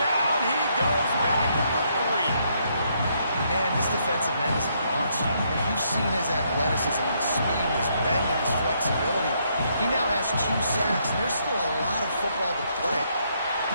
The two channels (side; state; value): both; inverted; correlation -0.73